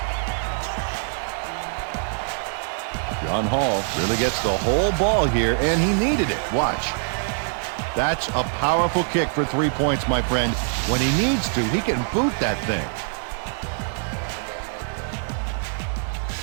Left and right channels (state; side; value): silent; left; digital silence